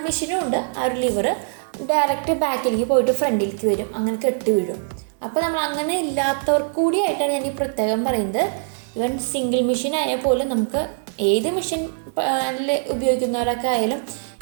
മെഷീനും ഉണ്ട്. ആ ഒരു ലിവർ ഡയറക്റ്റ് ബാക്കിലേക്ക് പോയിട്ട് ഫ്രണ്ടിലേക്ക് വരും, അങ്ങനെ കെട്ടി വീഴും. അപ്പോൾ നമ്മൾ അങ്ങനെ ഇല്ലാത്തവർക്ക് കൂടിയായിട്ടാണ് ഞാൻ ഈ പ്രത്യേകം പറയുന്നത്. സിംഗിൾ മെഷീൻ ആയാൽ പോലും നമുക്ക് ഏത് മെഷീൻ ഉപയോഗിക്കുന്നവരൊക്കെ ആയാലും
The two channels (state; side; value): silent; left; digital silence